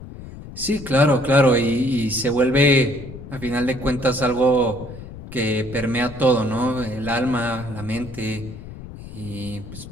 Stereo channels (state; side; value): noise; left; rumble, 14 dB below the sound